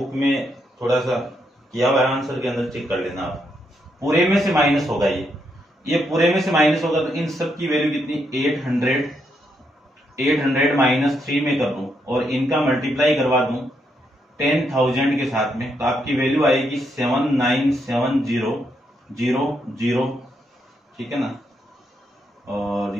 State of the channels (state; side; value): normal; both; correlation 0.78